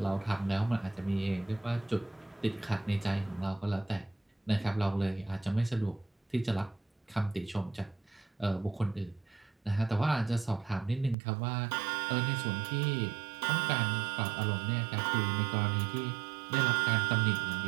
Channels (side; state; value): left; drops out; at 11.2 s